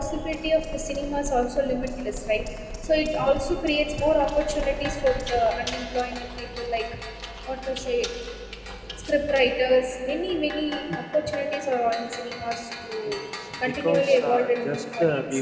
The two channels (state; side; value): identical; both; correlation 1.00